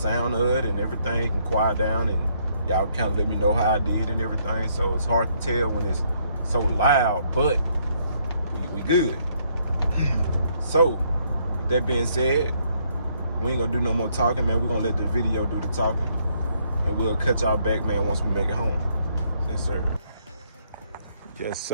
of it and everything can quiet down, and y'all kind of let me know how I did and everything. So it's hard to tell when it's so loud, but we good. So with that being said, we ain't gonna do no more talking, man. We're gonna let the video do the talking, and we'll cut y'all back, man, once we make it home. Yes, sir. Yes,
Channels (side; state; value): both; inverted; correlation -0.70